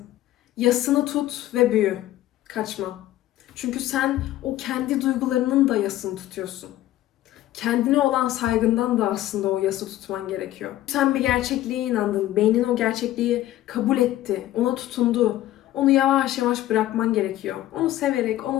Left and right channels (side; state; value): right; quieter; 14.3 dB